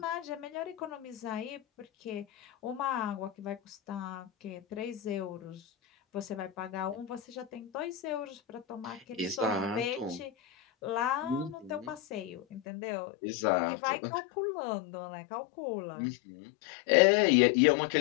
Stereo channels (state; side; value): drops out; right; at 12.6 s